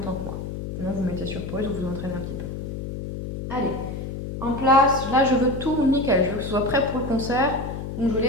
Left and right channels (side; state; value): left; noise; hum, 6 dB below the sound